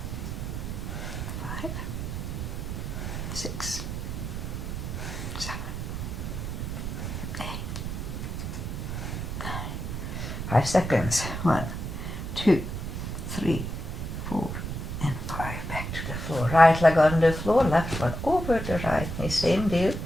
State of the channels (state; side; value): noise; right; rumble, 4 dB below the sound